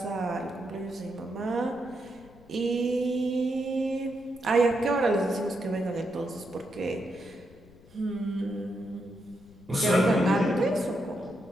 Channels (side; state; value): left; noise; rumble, 24 dB below the sound